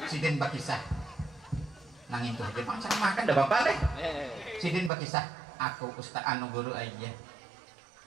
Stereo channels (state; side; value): drops out; left; at 4.9 s